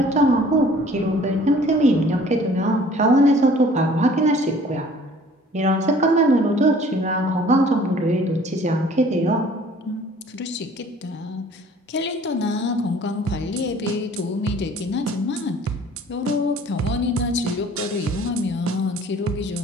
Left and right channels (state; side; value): normal; both; correlation 0.52